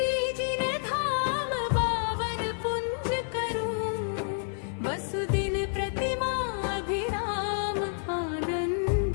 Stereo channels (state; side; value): silent; right; digital silence